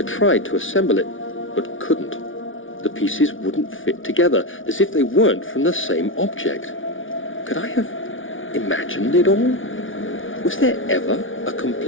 tried to assemble it, but couldn't. The pieces wouldn't fit together, as if they weren't from the same object. Could I have imagined it all? Was there ever a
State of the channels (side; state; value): right; late; 0.57 ms